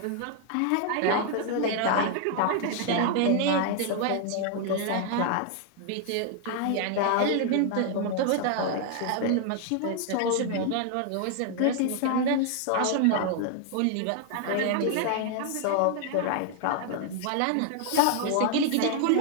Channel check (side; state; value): both; different; correlation 0.00